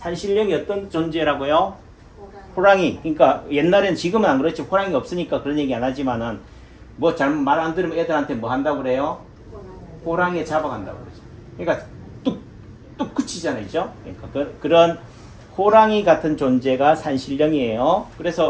어떤 존재라고요? 호랑이. 그러니까 옛날엔 지금은 안 그렇지. 호랑이 없으니까 그런 얘기 안 하지만은 뭐 잘못 말 안 들으면 애들한테 뭐 한다고 그래요? 호랑이에 잡아간다고 그러죠. 그러니까 뚝뚝 그치잖아요. 그죠? 그러니까 그런 호랑이 같은 존재가 산신령이에요.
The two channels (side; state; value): both; identical; correlation 1.00